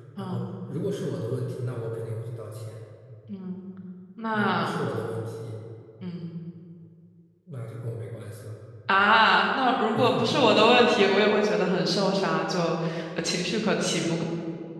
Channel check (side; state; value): both; identical; correlation 1.00